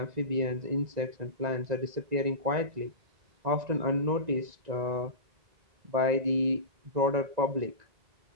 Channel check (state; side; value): late; left; 1.9 ms